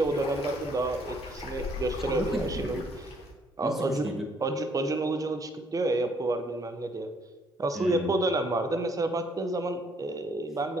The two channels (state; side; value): normal; both; correlation 0.66